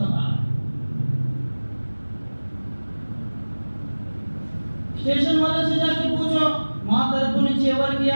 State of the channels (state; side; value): inverted; both; correlation -1.00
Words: స్టేషన్ वाले से जाके पूछो మా తరపు నుంచి ఎవరికి